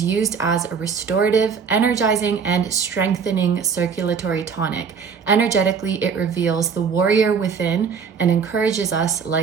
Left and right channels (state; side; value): quieter; left; 6.1 dB